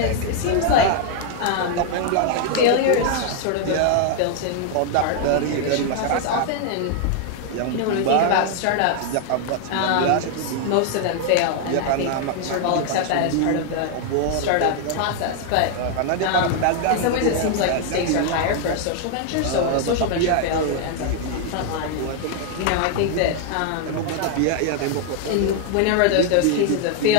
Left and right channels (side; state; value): both; different; correlation 0.00